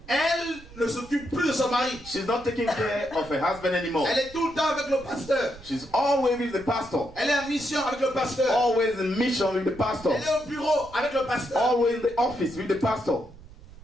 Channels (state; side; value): noise; right; rumble, 20 dB below the sound